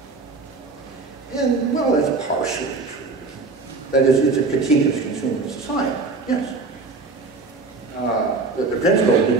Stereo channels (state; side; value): quieter; left; 3.9 dB